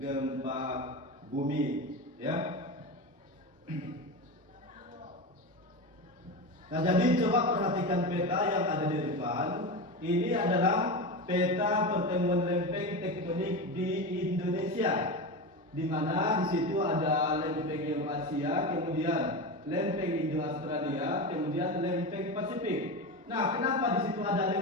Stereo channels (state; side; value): normal; both; correlation 0.21